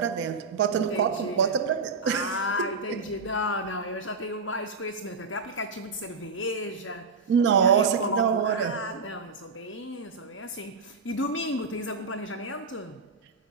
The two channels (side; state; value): left; quieter; 4.5 dB